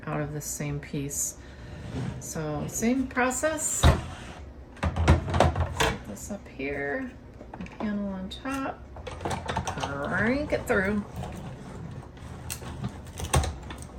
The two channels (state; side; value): identical; both; correlation 1.00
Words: out of this same piece. So same process. Set this up here, put my panel on top, crank it through.